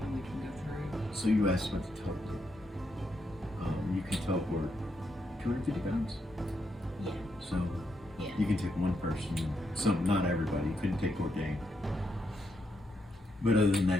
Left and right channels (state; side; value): normal; both; correlation 0.80